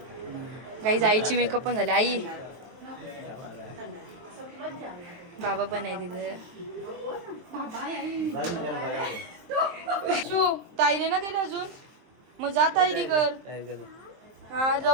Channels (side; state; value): left; late; 23 ms